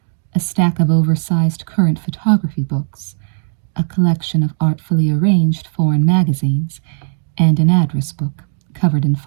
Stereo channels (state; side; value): silent; left; digital silence